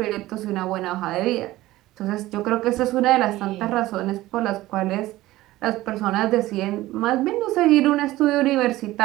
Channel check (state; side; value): quieter; left; 16.9 dB